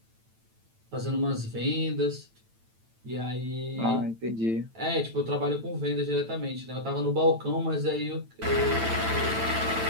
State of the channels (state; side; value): late; left; 9.0 ms